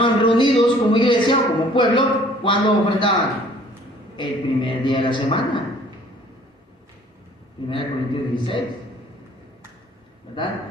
reunidos como iglesia o como pueblo. ¿Cuándo ofrendaban? El primer día de la semana. 1 Corintios 16, ¿verdad?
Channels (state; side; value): normal; both; correlation 0.55